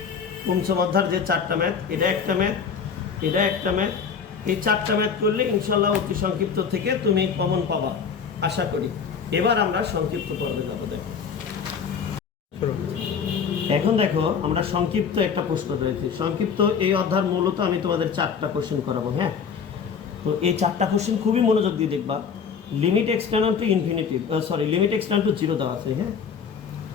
পঞ্চম অধ্যায়ের যে 4টা ম্যাথ, এটা একটা ম্যাথ, এটা একটা ম্যাথ, এই 4টা ম্যাথ করলে ইনশাল্লাহ অতি সংক্ষিপ্ত থেকে তুমি কমন পাবা আশা করি। এবার আমরা সংক্ষিপ্ত পর্বে যাব। দেখো এখন দেখো আমরা সংক্ষিপ্ত একটা প্রশ্ন রয়েছে। সংক্ষিপ্ত এই অধ্যায় মূলত আমি তোমাদের 4টা কোশ্চেন করাবো। হ্যাঁ, তো এই 4টা কোশ্চেন খুবই মনোযোগ দিয়ে দেখবা। Limit x tends to infinity, limit x tends to 0 দেওয়া আছে। হ্যাঁ,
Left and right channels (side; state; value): right; quieter; 6.4 dB